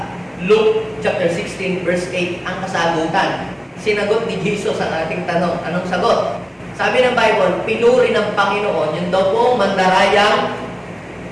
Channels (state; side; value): identical; both; correlation 1.00